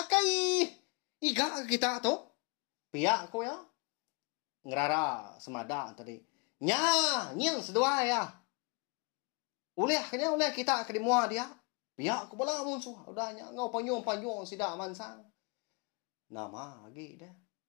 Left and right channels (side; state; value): right; quieter; 31.4 dB